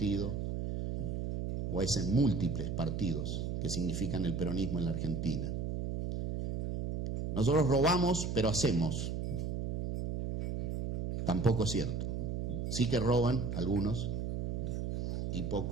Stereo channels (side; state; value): right; noise; hum, 1 dB below the sound